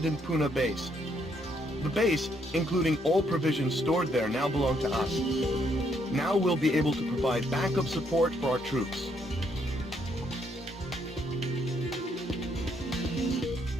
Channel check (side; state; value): both; normal; correlation 0.72